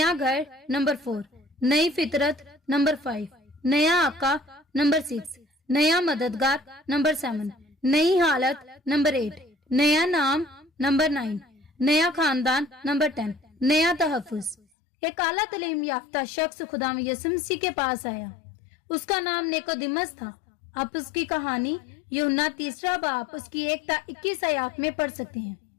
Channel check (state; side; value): drops out; right; at 14.6 s